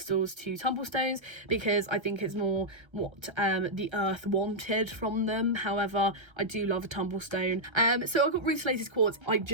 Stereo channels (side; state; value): left; late; 1.3 ms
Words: to tumble stones because I think it's more what the earth wanted from them. However, I do love a tumble stone. So I got rutilated quartz. I